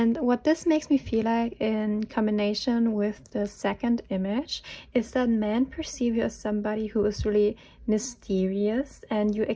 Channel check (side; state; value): both; identical; correlation 1.00